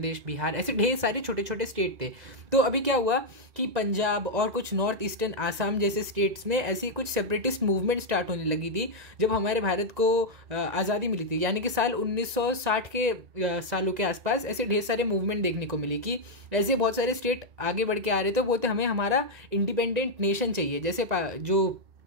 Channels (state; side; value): late; left; 1.9 ms